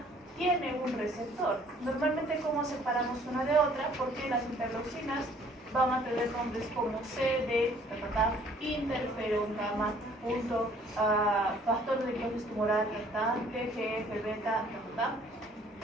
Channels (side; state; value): both; normal; correlation 0.58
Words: tiene un receptor. Normalmente, ¿cómo separamos una de otra? Porque las interleucinas van a tener nombres como CD, interferón gamma, factor de dióxido tumoral, TGF, beta,